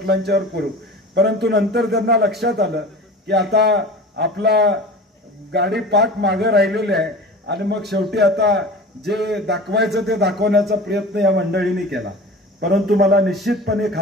करू, परंतु नंतर त्यांना लक्षात आलं की आता आपला गाडी पाठ मागे राहिलेली आहे आणि मग शेवटी आता जे दाखवायचं ते दाखवण्याचा प्रयत्न या मंडळींनी केला। परंतु मला निश्चितपणे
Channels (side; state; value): both; normal; correlation 0.37